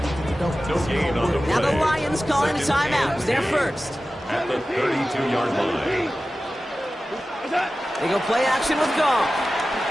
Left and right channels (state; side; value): normal; both; correlation 0.95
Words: No gain on the play. Now the Lions calling a timeout. It's their first. At the 32-yard line. They go play action with Goff.